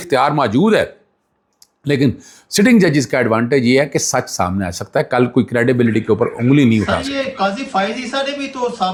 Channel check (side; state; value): both; identical; correlation 1.00